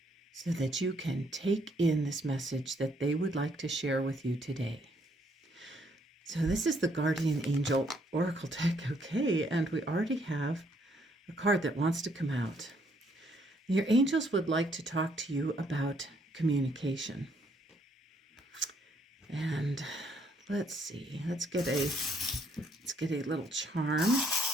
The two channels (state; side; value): normal; both; correlation 0.69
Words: so that you can take in this message that they would like to share with you today. So this is the Guardian Angel Oracle deck, okay, and we already have a card that wants to come out. Your angels would like to talk to you about communication. And let's see, let's get a little charm